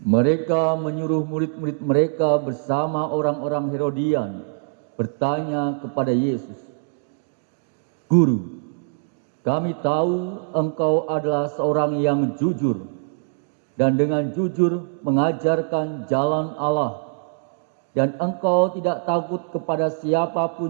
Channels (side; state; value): left; silent; digital silence